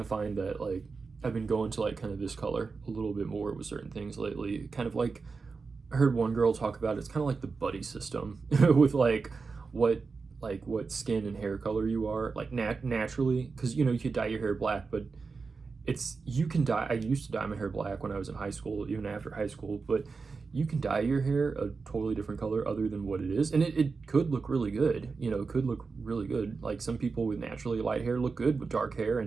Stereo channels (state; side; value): quieter; left; 4.6 dB